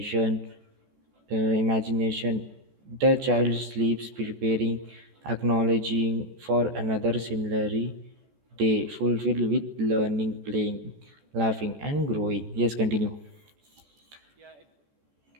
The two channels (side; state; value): left; late; 14 ms